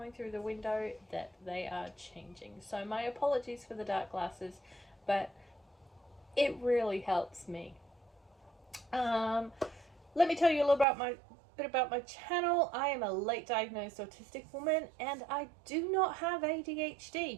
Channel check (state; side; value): drops out; left; at 10.9 s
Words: through the window that they are changing. So my apologies for the dark glasses, but it really helps me. Let me tell you a little bit about my channel. I am a late diagnosed autistic woman and I do not have